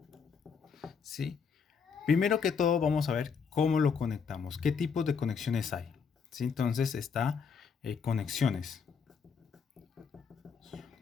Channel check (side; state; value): right; quieter; 6.1 dB